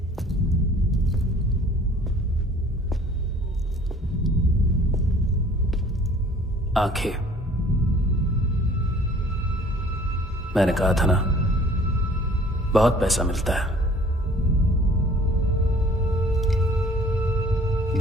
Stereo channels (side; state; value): both; normal; correlation 0.52